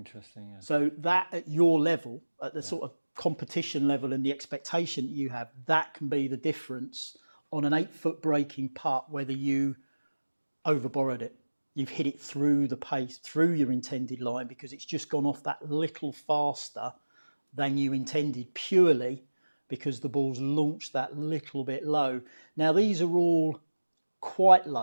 So that at your level, at the sort of competition level and the expectation that you have, that can be the difference on an 8-foot breaking putt, whether you overborrowed it. You've hit it through the pace, through your intended line, because it's just gone off that little faster than you intended, purely because the ball's launched that little bit low. Now, these are all quite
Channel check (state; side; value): inverted; both; correlation -1.00